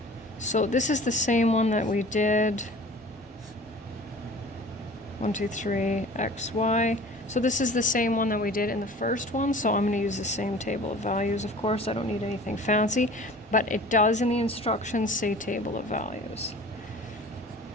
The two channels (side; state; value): both; normal; correlation 0.43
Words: So this is the same one that we did. 1, 2, 3, x, y. So this is the same one that we did in the first one, so I'm going to use the same table of values, of course. I don't need anything fancy, but it does in the instructions say table of values.